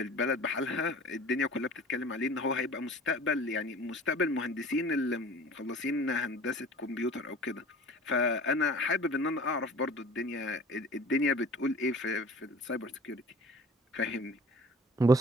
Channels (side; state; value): both; normal; correlation 0.44